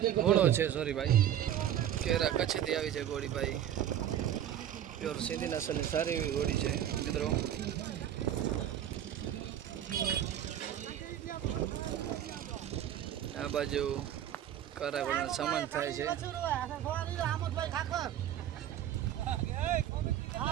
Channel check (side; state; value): left; quieter; 10.8 dB